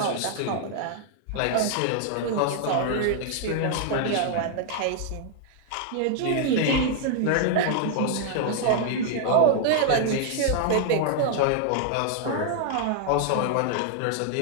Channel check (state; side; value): different; both; correlation 0.00